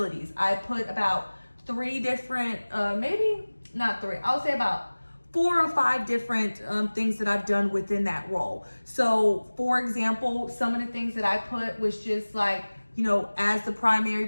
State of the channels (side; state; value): both; inverted; correlation -1.00